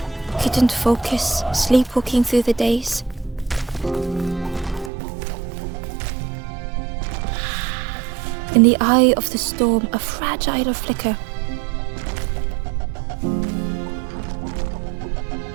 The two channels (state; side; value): drops out; left; at 4.9 s